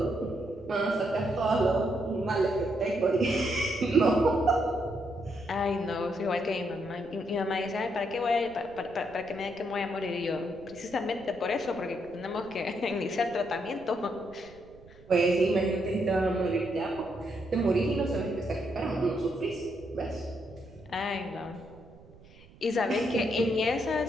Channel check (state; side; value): noise; right; rumble, 23 dB below the sound